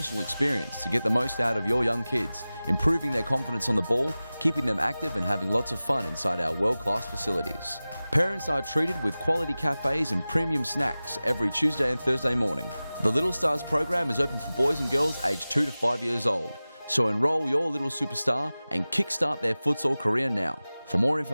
experience to get the most out of your young kids, improving their confidence on the ball, keeping them active and having lots of fun inside our world-class facilities. Parents are treated with quality cafes and premium snacks every Tuesday and Thursday morning. The Little Stars program is open for boys and girls aged 2 to 5 years old. So enroll your little superstar and kickstart their futsal career now. For more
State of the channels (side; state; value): both; inverted; correlation -0.97